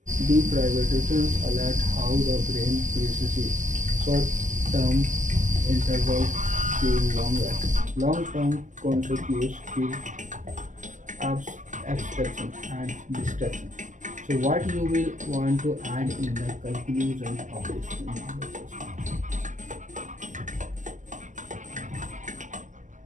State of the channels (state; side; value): late; left; 0.37 ms